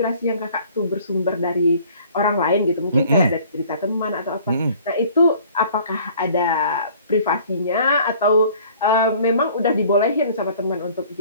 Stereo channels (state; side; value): inverted; both; correlation -0.53